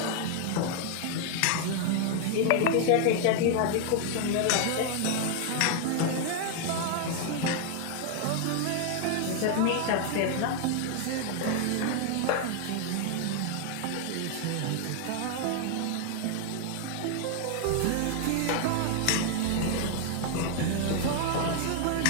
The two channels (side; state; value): both; different; correlation 0.00